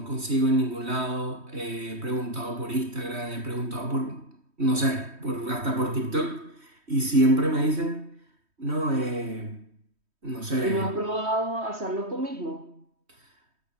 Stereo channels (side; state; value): left; late; 3.1 ms